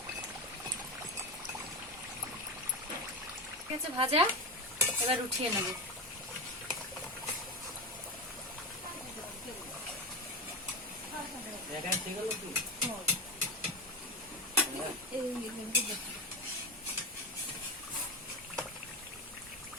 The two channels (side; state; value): both; normal; correlation 0.19